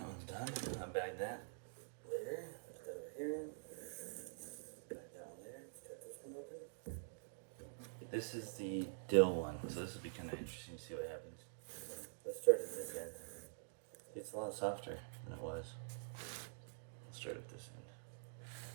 one's done. I'll bag that later. Put that over here. Bag that one there. Cut this one open. This is the dill one, so this will be kind of interesting to see what happens. Let's start at this end. It's a lot softer than it was. Let's start at this end.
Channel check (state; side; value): silent; left; digital silence